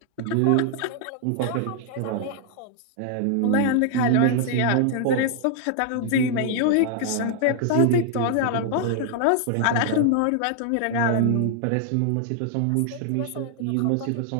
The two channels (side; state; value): both; different; correlation 0.00